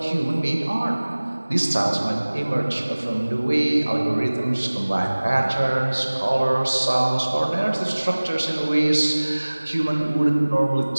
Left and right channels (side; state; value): both; inverted; correlation -1.00